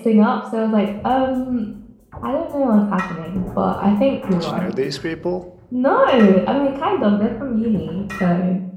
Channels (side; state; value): both; identical; correlation 1.00